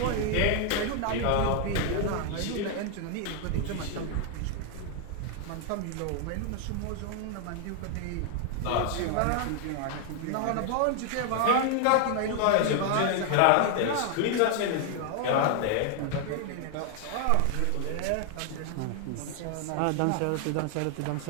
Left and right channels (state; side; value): different; both; correlation 0.00